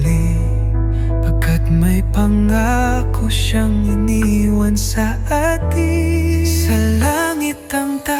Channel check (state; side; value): identical; both; correlation 1.00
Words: pagkat may pangako siyang iniwan sa atin. Sa langit ang